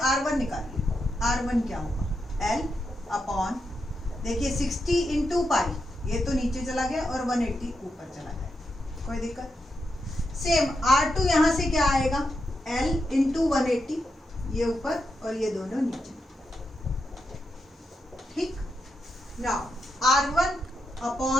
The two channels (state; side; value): normal; both; correlation 0.85